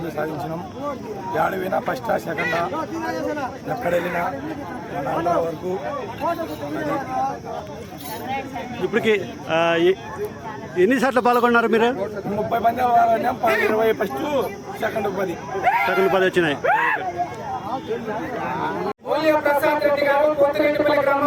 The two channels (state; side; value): identical; both; correlation 1.00